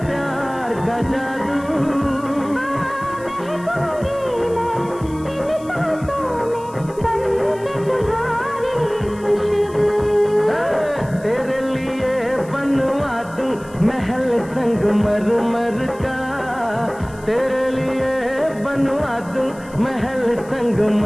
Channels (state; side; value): noise; left; hiss, 24 dB below the sound